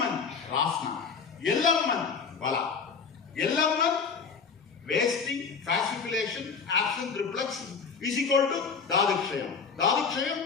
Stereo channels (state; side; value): quieter; right; 5.6 dB